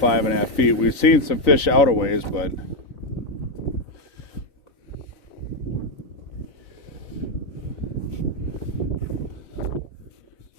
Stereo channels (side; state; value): right; late; 3.5 ms